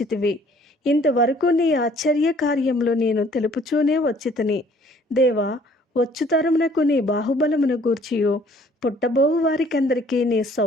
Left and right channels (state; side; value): normal; both; correlation 0.58